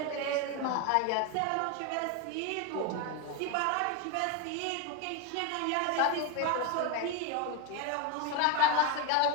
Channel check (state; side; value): different; both; correlation 0.02